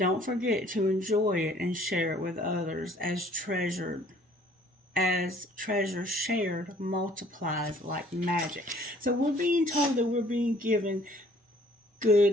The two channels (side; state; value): both; normal; correlation 0.57